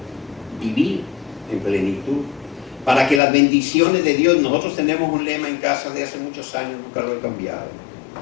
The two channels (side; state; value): right; drops out; at 3.2 s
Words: vivir en plenitud, para que las bendiciones de Dios, nosotros tenemos un lema en casa de hace muchos años, nunca lo he cambiado.